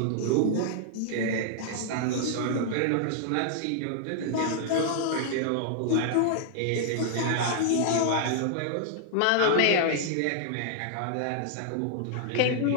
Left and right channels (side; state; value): both; different; correlation -0.01